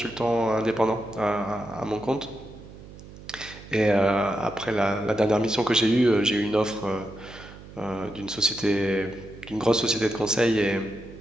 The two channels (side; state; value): right; noise; hum, 17 dB below the sound